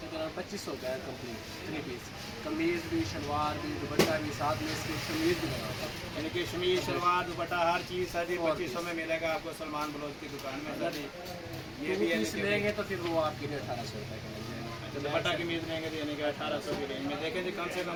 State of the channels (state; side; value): identical; both; correlation 1.00